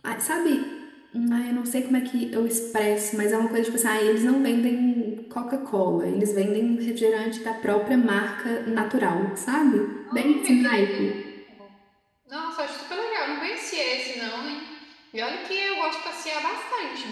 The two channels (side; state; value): both; identical; correlation 1.00